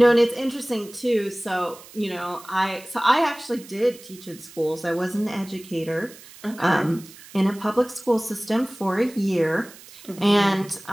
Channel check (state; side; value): noise; right; hiss, 20 dB below the sound